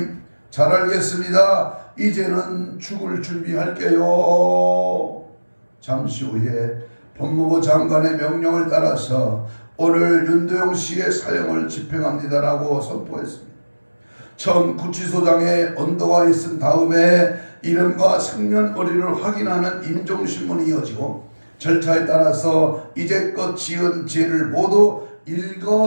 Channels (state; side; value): inverted; both; correlation -1.00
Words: 잘 알겠습니다. 이제는 죽을 준비할게요. 잠시 후에 법무부 장관의 명령을 따라서 오늘 윤도영 씨의 사형을 집행합니다라고 선포했습니다. 처음 구치소장에 언도가 있은 다음에 이름과 생년월일을 확인하는 인종신문이 이어지고 절차에 따라서 이제껏 지은 죄를 모두